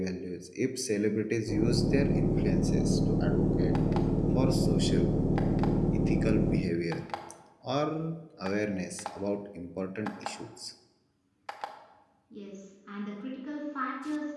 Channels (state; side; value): identical; both; correlation 1.00